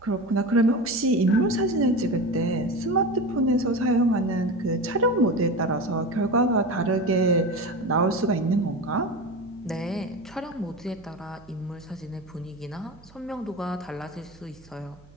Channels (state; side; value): noise; right; hum, 25 dB below the sound